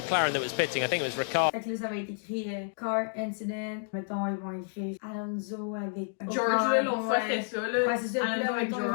that was pitting. I think it was Ricciardo. Fait que là, ça va être écrit car incident. Mettons, ils vont écrire Alonso avec George, là, l'autre fois, c'était ça, là. Ouais, c'est ça. Alonso là, avec mettons, ils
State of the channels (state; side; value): silent; right; digital silence